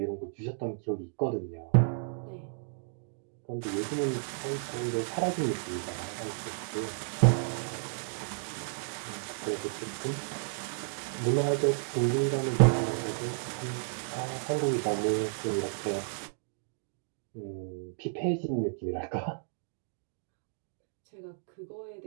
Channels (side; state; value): left; silent; digital silence